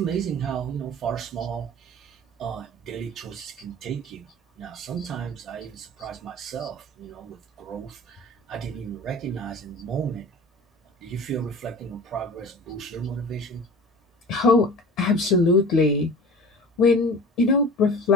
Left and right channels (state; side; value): normal; both; correlation 0.39